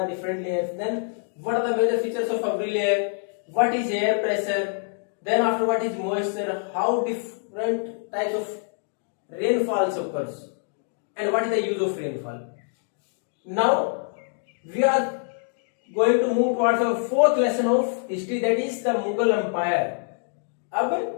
different layers? Then what are the major features of every layer? What is air pressure? Then after what is moisture? How different types of rainfalls occurs and what is the use of rainfall. Now we are going to move towards our fourth lesson of history, that is the Mughal Empire. अब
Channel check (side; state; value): right; silent; 62 dB below the other